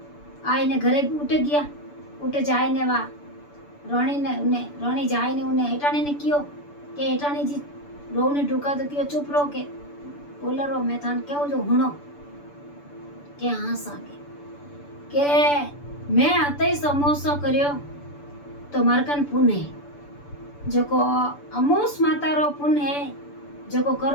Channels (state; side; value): late; right; 6.9 ms